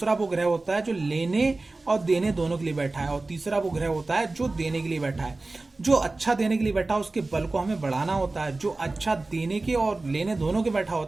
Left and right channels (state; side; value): quieter; left; 3.3 dB